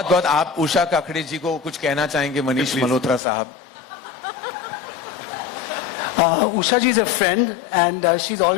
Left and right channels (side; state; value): right; drops out; at 3.2 s